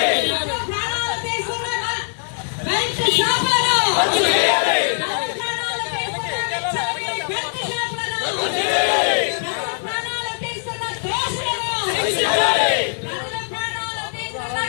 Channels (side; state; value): right; silent; 65 dB below the other